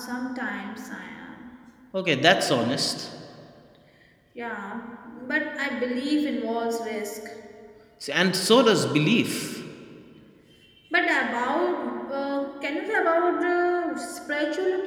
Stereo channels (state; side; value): identical; both; correlation 1.00